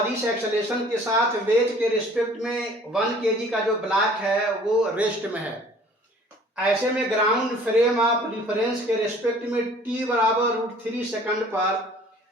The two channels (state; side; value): normal; both; correlation 0.52